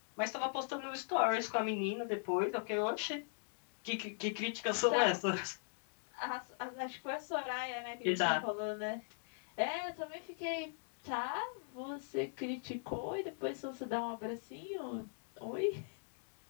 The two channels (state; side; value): silent; right; digital silence